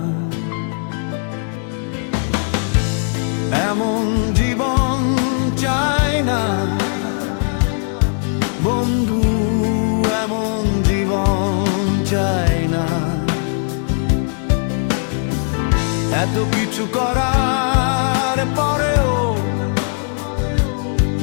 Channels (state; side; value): silent; right; 58 dB below the other